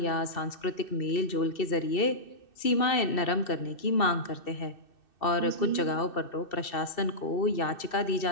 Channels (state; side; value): late; right; 2.7 ms